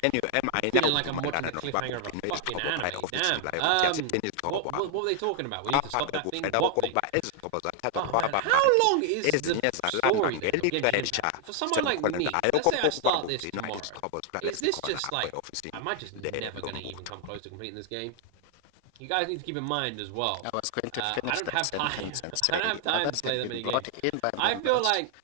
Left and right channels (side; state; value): both; different; correlation 0.00